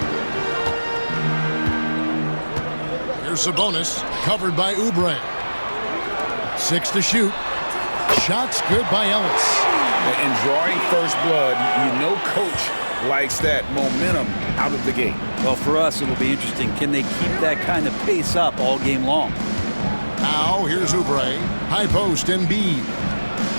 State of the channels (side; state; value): both; inverted; correlation -1.00